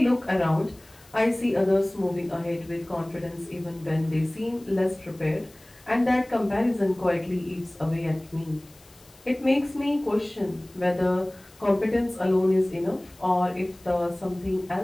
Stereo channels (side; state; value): left; noise; hiss, 27 dB below the sound